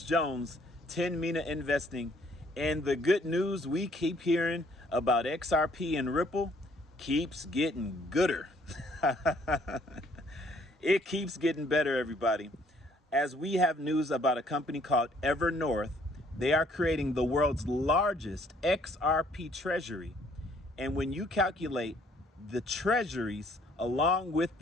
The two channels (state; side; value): normal; both; correlation 0.63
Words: Jones, 10 Mina Investing, and the good news we keep hearing about XRP and Ripple keeps getting gooder. It keeps getting better, everybody. As we have news about a company called Evernorth, they are creating the world's largest XRP treasury. And when you calculate the treasuries along with